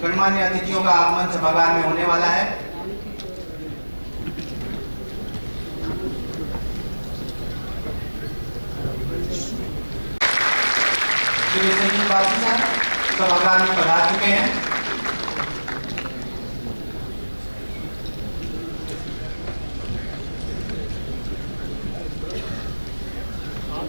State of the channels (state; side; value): inverted; both; correlation -1.00